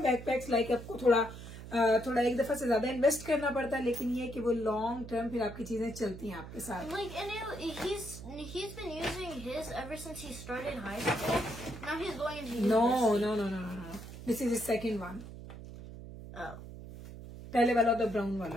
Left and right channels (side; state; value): right; noise; hum, 12 dB below the sound